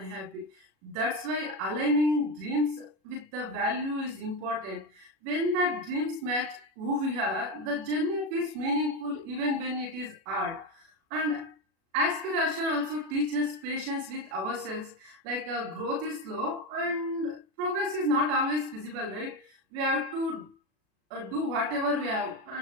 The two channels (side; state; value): left; late; 37 ms